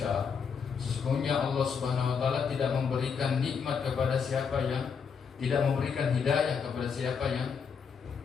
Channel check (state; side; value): quieter; right; 6.3 dB